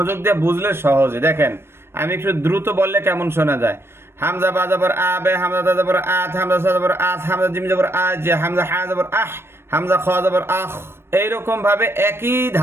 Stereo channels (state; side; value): late; left; 0.12 ms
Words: দিয়ে বুঝলে সহজে। দেখেন, আমি একটু দ্রুত বললে কেমন শোনা যায়। হামজা বা জবর আবে, হামজা দা জবর আত, হামজা সা জবর আস, হামজা জিম জবর আজ, হামজা হা জবর আহ, হামজা খ জবর আখ। এইরকম ভাবে একই